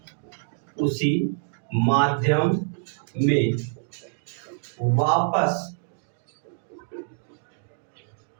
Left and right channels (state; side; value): silent; left; digital silence